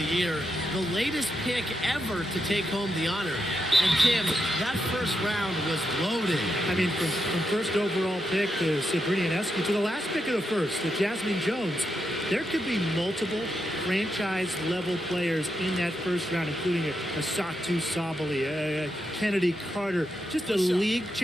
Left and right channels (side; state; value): both; normal; correlation 0.84